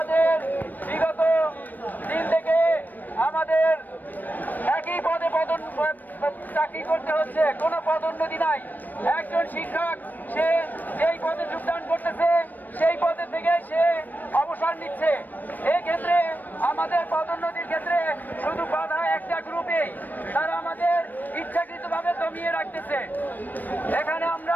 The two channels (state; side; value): late; right; 0.087 ms